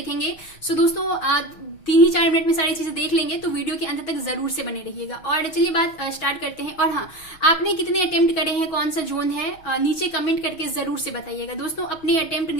सो दोस्तों 3-4 मिनट में सारी चीजें देख लेंगे तो वीडियो के अंत तक जरूर से बने रहिएगा। और चलिए बात स्टार्ट करते हैं। और हाँ, आपने कितने अटेम्प्ट करे हैं, कौन सा जोन है, नीचे कमेंट करके जरूर से बताइएगा दोस्तों। अपने अटेम्प्ट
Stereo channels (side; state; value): right; late; 6.3 ms